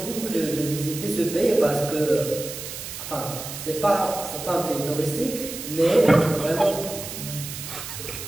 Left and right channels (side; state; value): right; noise; hiss, 9 dB below the sound